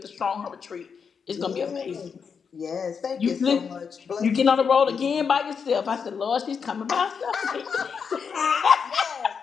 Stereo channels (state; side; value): quieter; right; 6.2 dB